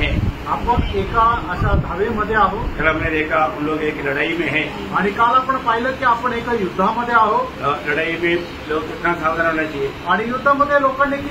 आपण एका अशा धावेमध्ये आहोत। कल हमने देखा हम लोग एक लड़ाई में हैं आणि काल आपण पाहिलं की आपण एका युद्धामध्ये आहोत। लड़ाई में लोग कितना सावधान होना चाहिए आणि युद्धामध्ये लोकांनी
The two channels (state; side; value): identical; both; correlation 1.00